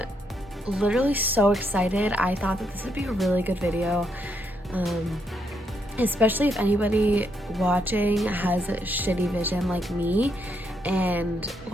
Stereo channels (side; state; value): both; normal; correlation 0.77